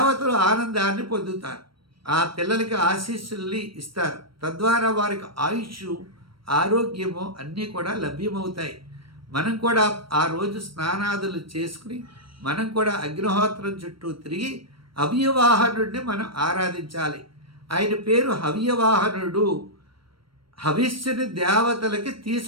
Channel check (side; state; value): left; late; 0.74 ms